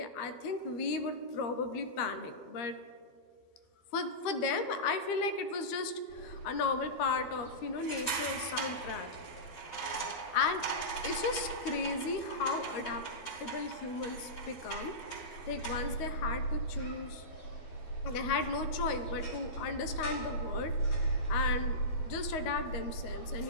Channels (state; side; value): late; right; 13 ms